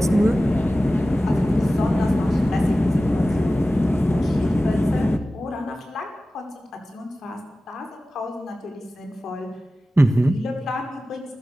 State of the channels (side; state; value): both; normal; correlation 0.96